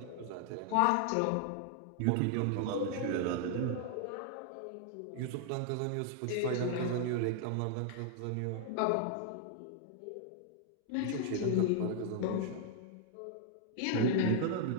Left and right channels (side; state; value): both; different; correlation 0.00